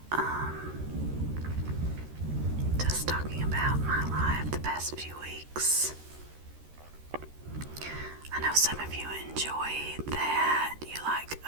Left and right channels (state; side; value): late; left; 13 ms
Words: just talking about my life the past few weeks. I know some of you enjoy that, you like